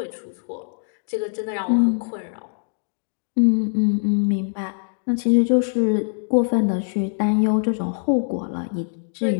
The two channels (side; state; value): right; silent; digital silence